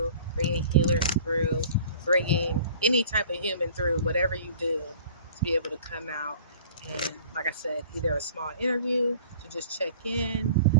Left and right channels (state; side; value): inverted; both; correlation -0.48